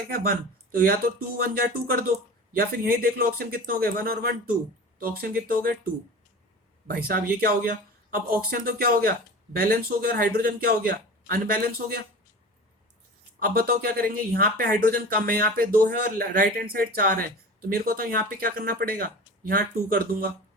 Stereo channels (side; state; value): both; normal; correlation 0.35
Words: क्या, वन। तो या तो टू वन जा टू कर दो, या फिर यही देख लो ऑक्सीजन कितने हो गए, वन और वन टू। तो ऑक्सीजन कितने हो गए, टू। भाई साहब ये क्या हो गया, अब ऑक्सीजन तो क्या हो गया, बैलेंस हो गया, और हाइड्रोजन क्या हो गया, अनबैलेंस हो गया। अब बताओ क्या करेंगे, यहाँ पे हाइड्रोजन कम है, यहाँ पे दो है और राइट हैंड साइड चार है। तो मेरे को तो यहाँ पे क्या करना पड़ेगा, यहाँ टू कर दूंगा।